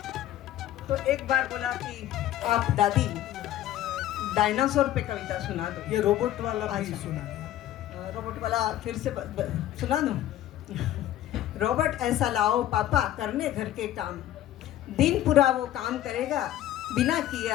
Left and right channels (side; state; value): right; quieter; 13.0 dB